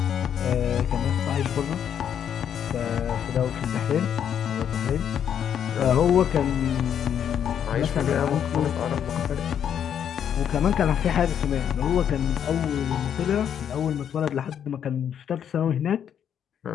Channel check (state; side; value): quieter; right; 8.9 dB